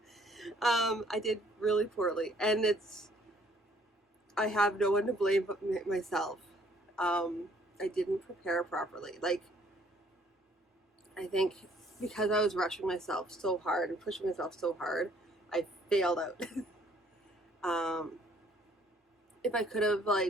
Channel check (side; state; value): both; normal; correlation 0.62